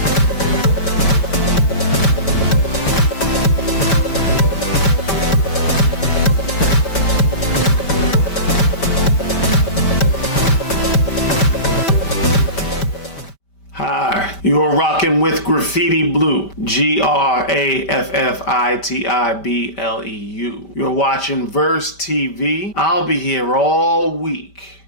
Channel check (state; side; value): late; right; 5.1 ms